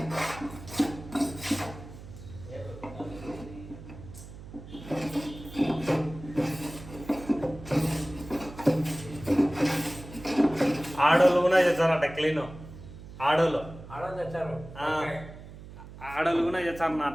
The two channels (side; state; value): right; noise; hum, 15 dB below the sound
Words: ఆడోళ్ళు కూడా చేస్తారట క్లీన్. ఆడోళ్ళు తెచ్చారు. ఆడోళ్ళు కూడా